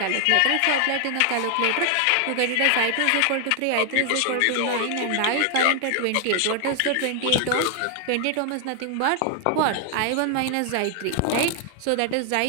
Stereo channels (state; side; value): different; both; correlation 0.00